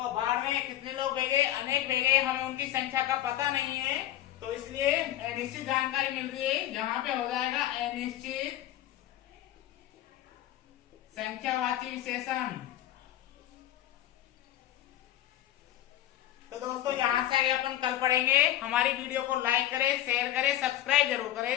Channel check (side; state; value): right; quieter; 13.3 dB